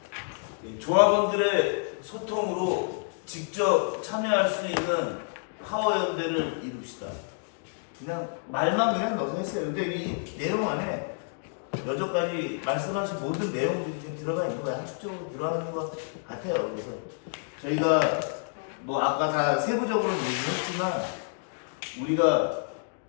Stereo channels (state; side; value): silent; right; digital silence